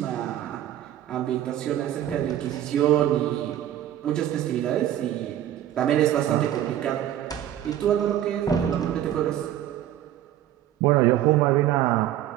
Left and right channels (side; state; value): left; quieter; 11.9 dB